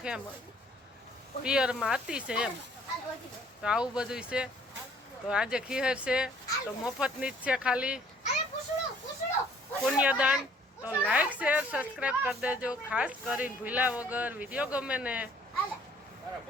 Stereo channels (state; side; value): normal; both; correlation 0.59